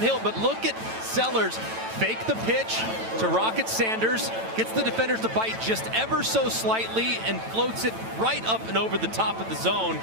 but look at Sellers fake the pitch to Rocket Sanders, gets the defenders to bite just ever so slightly and floats it right up and over the top of the zone.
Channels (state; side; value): late; left; 9.0 ms